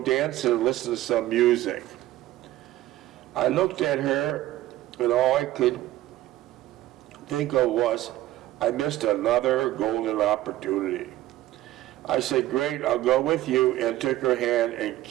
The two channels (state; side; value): quieter; left; 15.1 dB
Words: dancing and listen to some music. I looked at her, and all I could think of was, I missed another golden opportunity. I said, great, I'll go with you, and took her hand and